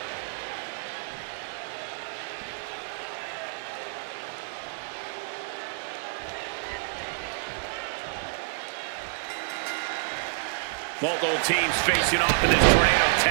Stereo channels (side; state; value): left; silent; digital silence